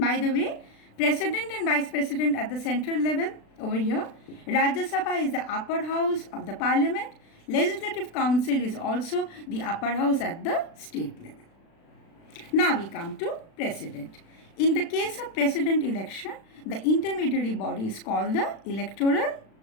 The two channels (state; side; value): late; right; 36 ms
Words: the way, President and Vice President at the central level over here, Rajya Sabha is the upper house of the parliament, Legislative Council is also the upper house at the state level. Now we come to President. In the case of President election, the intermediary body is called the Electoral